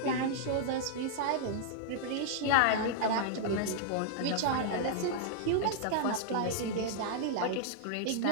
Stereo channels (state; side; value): different; both; correlation -0.01